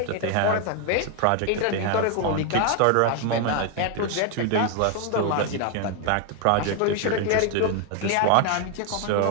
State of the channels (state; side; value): different; both; correlation 0.01